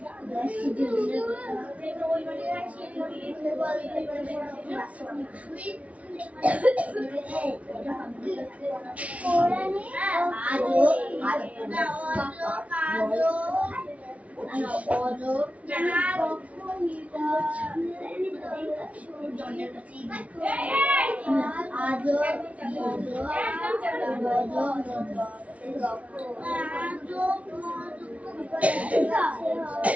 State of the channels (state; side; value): late; left; 0.066 ms